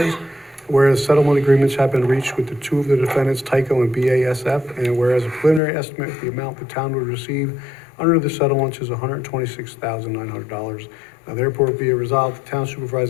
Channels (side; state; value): right; drops out; at 5.6 s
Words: whereas settlement agreements have been reached with the two of the defendants, Tyco and BASF, and whereas a preliminary estimate of the amount the town would receive under the settlements is $126,900. Now therefore be it resolved, the town